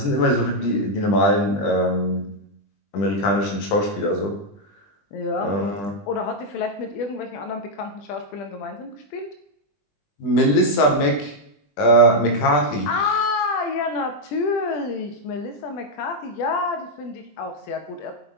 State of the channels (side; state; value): right; late; 20 ms